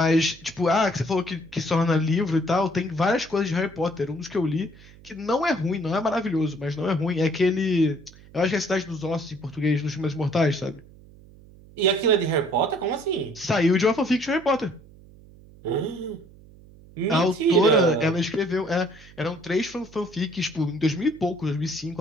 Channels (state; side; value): noise; right; hum, 23 dB below the sound